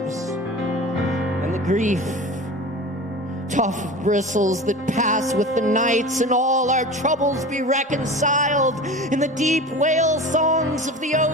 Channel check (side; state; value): both; normal; correlation 0.34